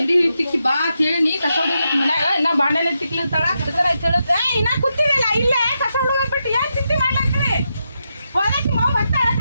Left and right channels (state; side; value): inverted; both; correlation -0.85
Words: ತಿಕ್ಕಿ ಬಾ ಅಂತ ಹೇಳಿ ನೀ ಕಸ ಹುಡುಗ ಮನ್ಯಾಗ ಇನ್ನ ಬಾಂಡೆಲೆ ತಿಕ್ಲಿರ್ತಾಳ ಇನ್ನ ಕೂತಿರಲ್ಲ ಇಲ್ಲೇ ಕಸ ಹುಡುಗ ಬಿಟ್ಟು ಏನ್ ಚಿಂತೆ ಮಾಡ್ಲಾಕ್ರಿ ಹೊಲಕ್ಕೆ ಮಾವು ಬರ್ತಾಳ